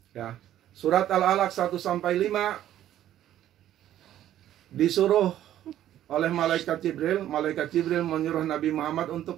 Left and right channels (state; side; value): quieter; left; 12.1 dB